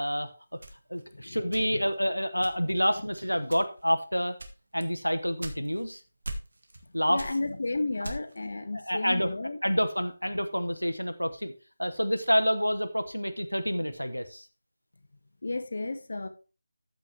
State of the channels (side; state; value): both; inverted; correlation -0.99